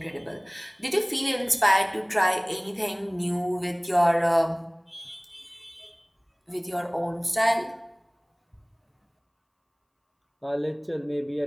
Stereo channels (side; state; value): both; identical; correlation 1.00